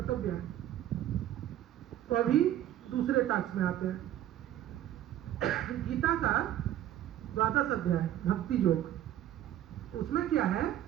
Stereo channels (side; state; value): left; quieter; 12.1 dB